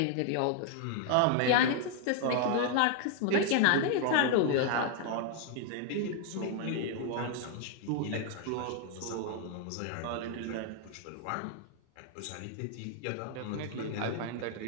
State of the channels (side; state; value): both; different; correlation 0.00